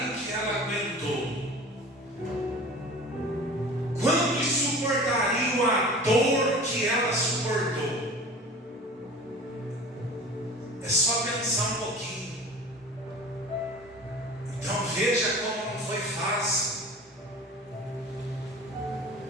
o que ela aguentou? Quantos suportariam a dor que ela suportou? É só pensar um pouquinho. Então veja como não foi fácil.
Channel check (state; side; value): normal; both; correlation 0.40